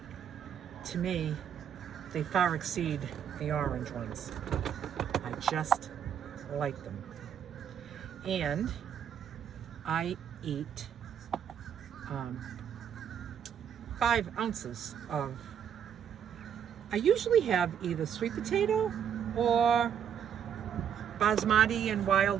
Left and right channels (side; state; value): left; quieter; 8.5 dB